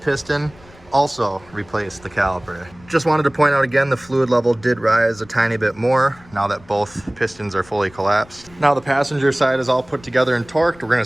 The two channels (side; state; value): left; noise; rumble, 25 dB below the sound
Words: also replace the caliper. Just wanted to point out again, the fluid level did rise a tiny bit more now that both pistons are fully collapsed. Now the passenger side is all put together and torqued. We're gonna